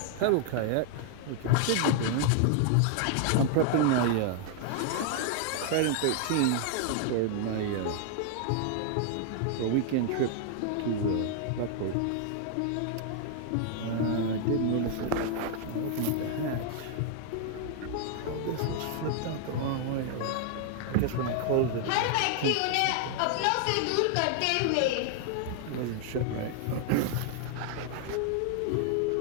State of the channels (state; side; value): different; both; correlation 0.00